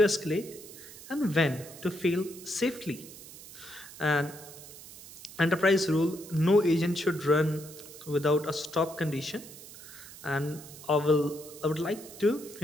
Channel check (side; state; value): right; noise; hiss, 16 dB below the sound